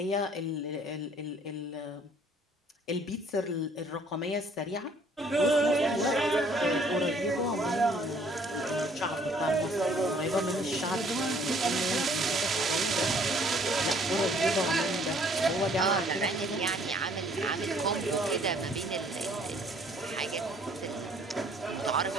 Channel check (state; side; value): normal; both; correlation 0.60